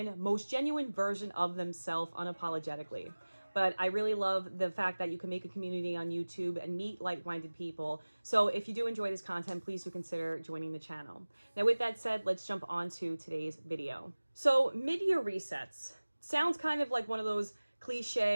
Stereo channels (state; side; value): inverted; both; correlation -1.00